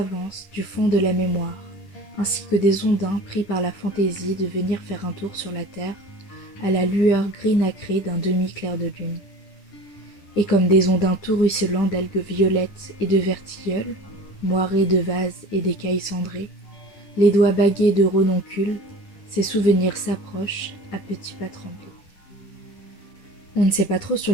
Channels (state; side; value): late; right; 10 ms